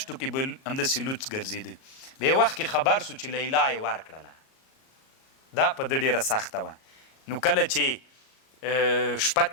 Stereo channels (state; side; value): late; right; 38 ms